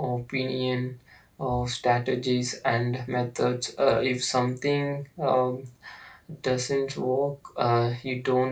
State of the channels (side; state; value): both; identical; correlation 1.00